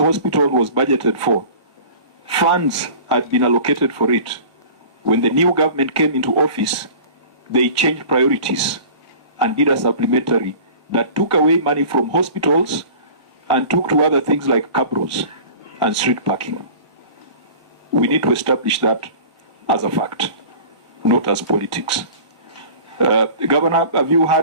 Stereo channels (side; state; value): both; inverted; correlation -0.41